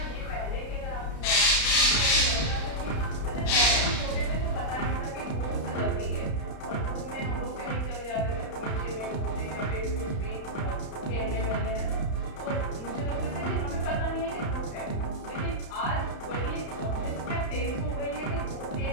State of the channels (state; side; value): late; right; 32 ms